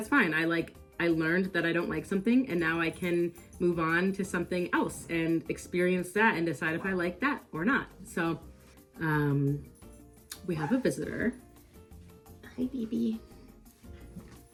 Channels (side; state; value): both; identical; correlation 1.00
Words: fine. I learned that I don't like something, and now I can move on to something else and experience that and decide if I like that or not. So we have a visitor. Hi, baby.